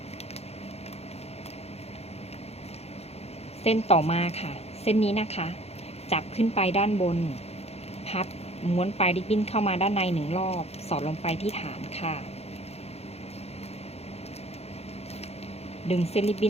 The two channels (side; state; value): right; late; 0.30 ms